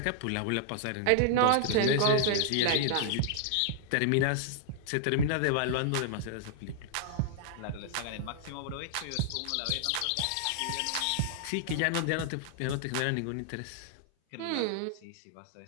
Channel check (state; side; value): different; both; correlation 0.00